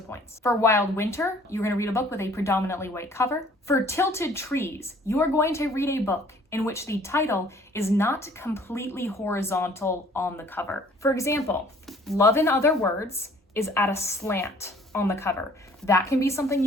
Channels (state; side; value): normal; both; correlation 0.56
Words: points. For Wild Winter, you're going to read a book with a predominantly white cover. For Tilted Trees, you are going to read a book in which the title is not completely horizontal on the cover. For example, Love in Other Words is at a slant on the cover. That can be something